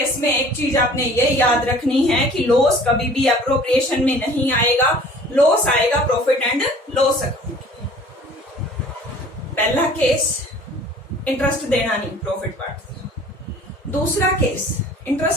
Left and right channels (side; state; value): both; normal; correlation 0.49